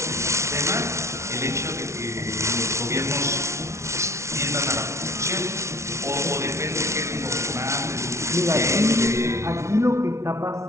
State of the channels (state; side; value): late; left; 0.13 ms